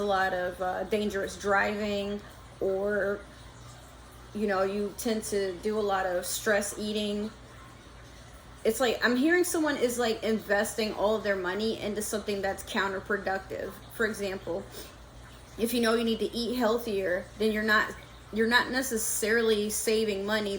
lot of dangerous driving, or, you know, you tend to do a lot of stress eating. It's like, I'm hearing someone is like investing all of their money into something that's counterproductive. For example, if you know you need to eat healthier, then you're not necessarily saving money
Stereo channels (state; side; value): identical; both; correlation 1.00